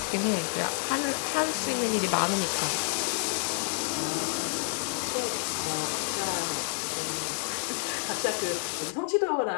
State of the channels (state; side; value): silent; right; 59 dB below the other